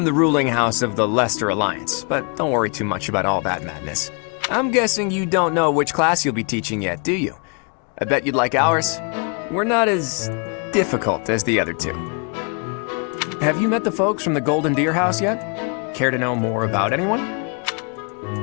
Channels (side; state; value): right; quieter; 37.5 dB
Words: the ruling house of the Leicester Alliance, but don't worry too much about all that madness. I'm guessing you don't know which class you'll be teaching yet, do you? I bet you'd like ours. We're not as difficult as the other two. Have you met the folks from the Golden Deer House yet? Care to know more about anyone?